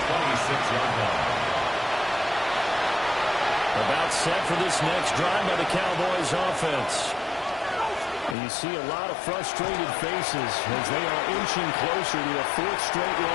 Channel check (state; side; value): drops out; right; at 8.3 s